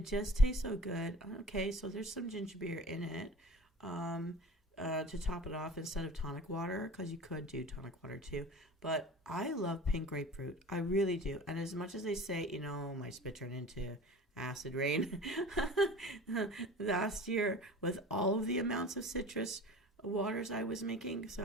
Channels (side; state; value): both; normal; correlation 0.40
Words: just tastes so good. Okay, so there's some ginger beer in it to top it off instead of tonic water, because you could do tonic water too. But I love pink grapefruit. I really do. And as much as they say, you know, my spit turned into acid rain last year with all of the amounts of citrus waters I was making, so